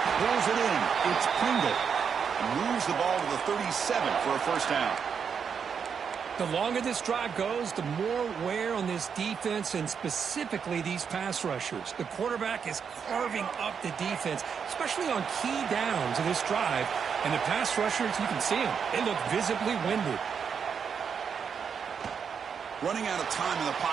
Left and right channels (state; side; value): quieter; left; 6.7 dB